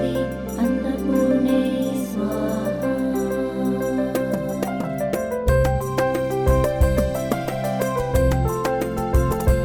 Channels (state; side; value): identical; both; correlation 1.00